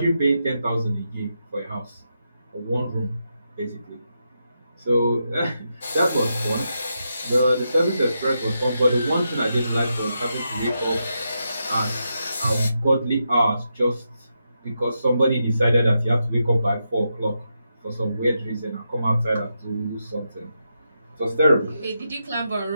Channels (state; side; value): inverted; both; correlation -0.85